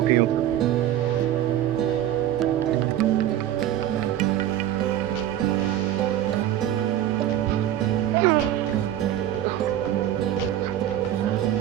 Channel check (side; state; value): left; quieter; 11.9 dB